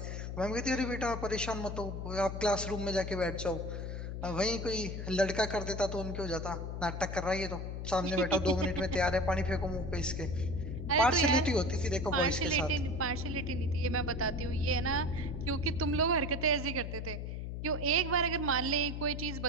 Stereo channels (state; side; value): noise; left; hum, 5 dB below the sound